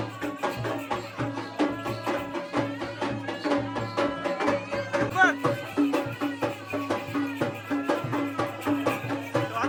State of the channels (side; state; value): both; identical; correlation 1.00